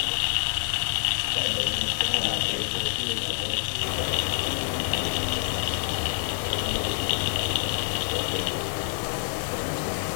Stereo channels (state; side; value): silent; right; digital silence